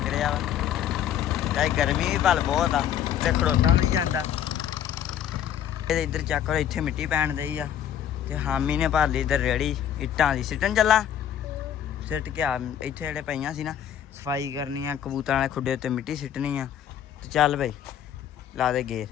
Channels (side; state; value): right; quieter; 10.1 dB